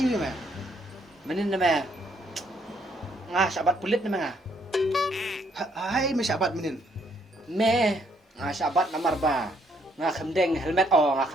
ya meh. Menen na me. Ngas sabat pulit na me nga. Hai mesabat menin. Me. Ngas sabat namar ba. Nga kemdeng helmet nga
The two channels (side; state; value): both; normal; correlation 0.70